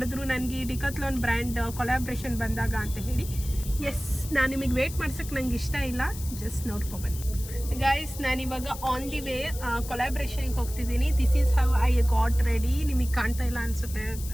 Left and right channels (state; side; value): noise; left; hiss, 13 dB below the sound